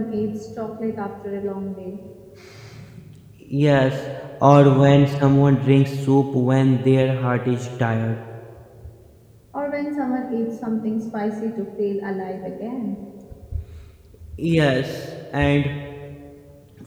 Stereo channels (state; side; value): identical; both; correlation 1.00